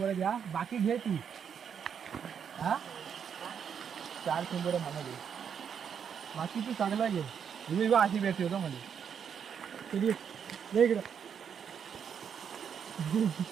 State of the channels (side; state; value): left; quieter; 7.6 dB